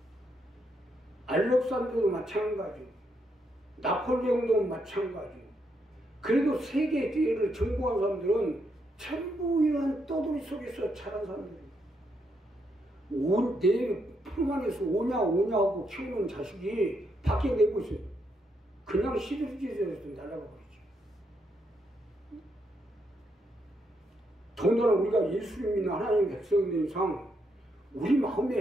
알렉산더도 마찬가지고 나폴레옹도 마찬가지고 그래도 세계 대회를 정복한 사람들은 전부 이런 떠돌이 속에서 자란 사람들이에요. 내 품 안에서 오냐 하고 키우는 자식이 밖에 내고 있어요. 그냥 시들지에서 날아가 버리죠. 더군다나 우리가 예수님이나 하나님의 백성이 된 이상 우리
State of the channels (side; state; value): both; normal; correlation 0.78